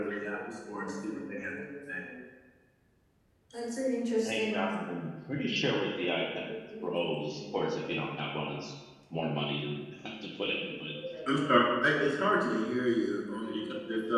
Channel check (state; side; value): identical; both; correlation 1.00